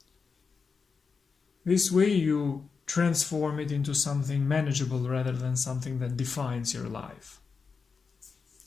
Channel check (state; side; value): quieter; right; 5.2 dB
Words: This way you transform it into something manageable rather than something that defines your life.